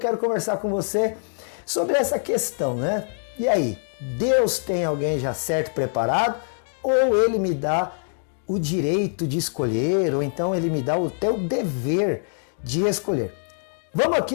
conversar com você sobre essa questão, né? E aí, Deus tem alguém já certo, preparado? Ou Ele me dá o direito de escolher? Ou então Ele me dá o teu dever de escolher? Vamos aqui,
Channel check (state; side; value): silent; right; digital silence